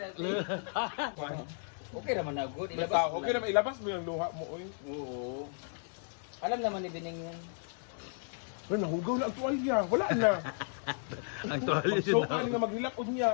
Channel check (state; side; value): silent; right; 55 dB below the other